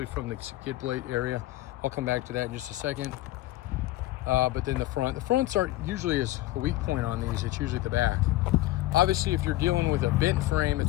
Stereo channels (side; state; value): right; quieter; 16.8 dB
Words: from the skid plate area. I'll come back to that in just a second. But then the fronts aren't usually as a weak point on these. It's usually the back. Obviously, if you're dealing with a bent frame,